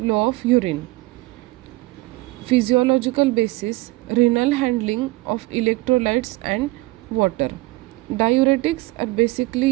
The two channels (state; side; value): quieter; left; 20.5 dB